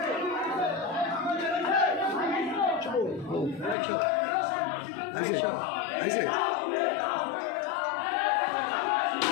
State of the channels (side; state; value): right; drops out; at 3.8 s